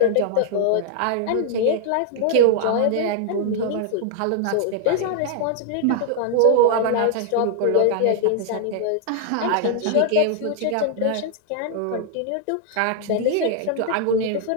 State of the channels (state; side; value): different; both; correlation -0.01